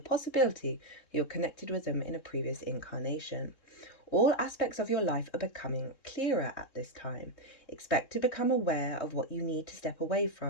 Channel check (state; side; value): late; right; 3.7 ms